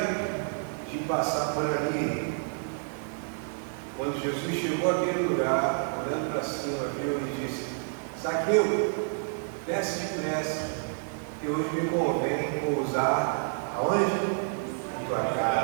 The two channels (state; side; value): silent; left; digital silence